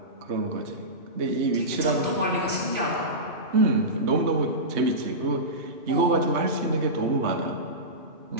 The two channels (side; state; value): left; late; 3.2 ms